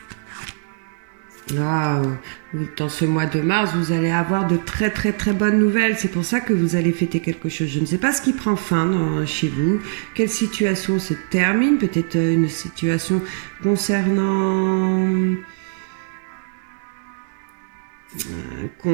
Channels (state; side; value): silent; left; digital silence